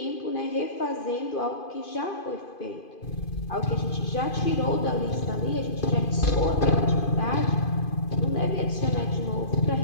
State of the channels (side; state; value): right; late; 2.5 ms